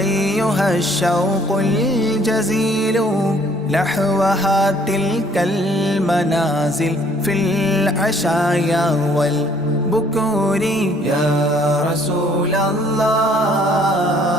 الشوق الجزيل نحوها تلك المنازل في العشايا والبكور يا رسول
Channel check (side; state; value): both; normal; correlation 0.61